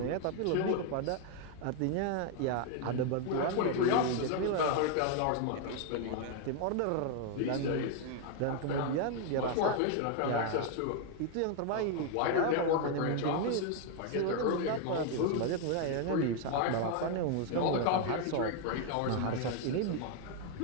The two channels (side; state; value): both; different; correlation 0.01